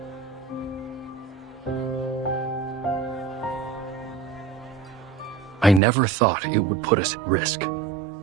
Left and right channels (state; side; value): drops out; left; at 5.8 s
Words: I never thought it would put us at risk.